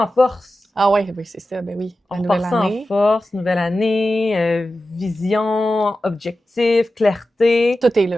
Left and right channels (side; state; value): both; normal; correlation 0.93